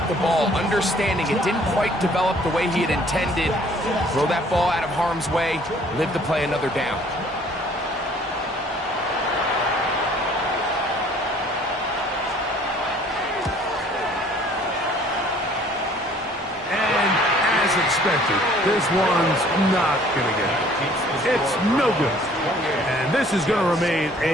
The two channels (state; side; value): normal; both; correlation 0.56